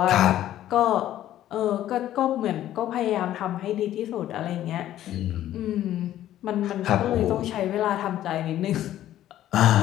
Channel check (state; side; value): quieter; right; 12.7 dB